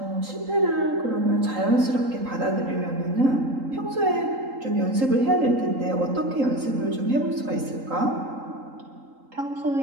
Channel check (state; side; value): late; left; 3.8 ms